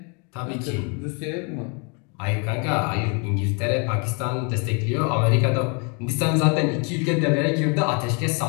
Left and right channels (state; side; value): quieter; right; 35.3 dB